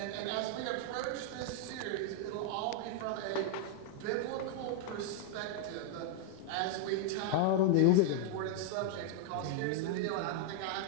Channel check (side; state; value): both; different; correlation 0.00